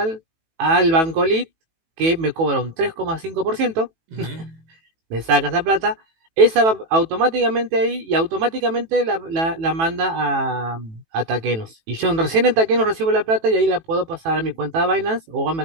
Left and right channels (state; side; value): late; left; 18 ms